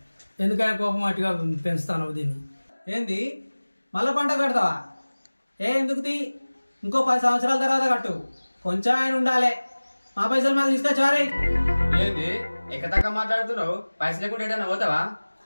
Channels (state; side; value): inverted; both; correlation -1.00